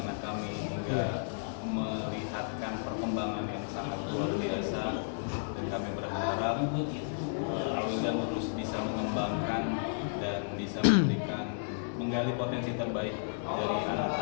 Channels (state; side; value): silent; right; digital silence